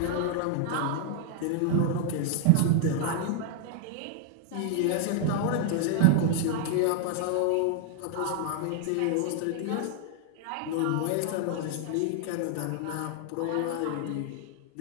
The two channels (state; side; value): different; both; correlation 0.00